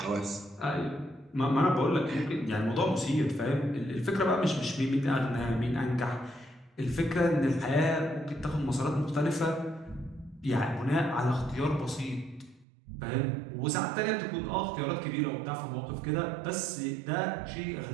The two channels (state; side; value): drops out; left; at 12.7 s